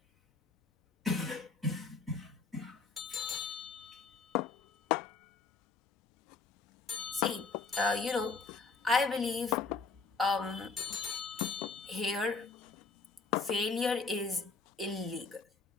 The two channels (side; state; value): right; quieter; 4.5 dB